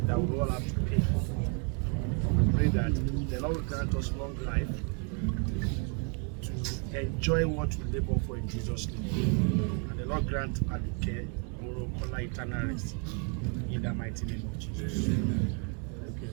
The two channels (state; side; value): quieter; left; 39.3 dB